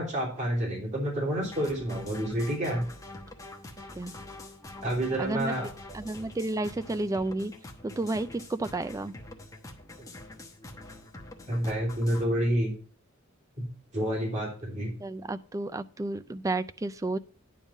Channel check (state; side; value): normal; both; correlation 0.69